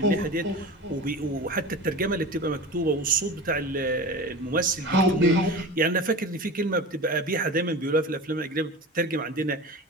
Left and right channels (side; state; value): both; normal; correlation 0.32